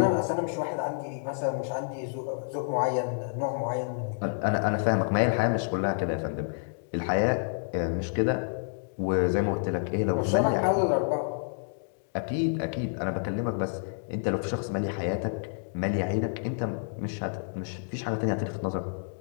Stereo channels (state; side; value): silent; right; digital silence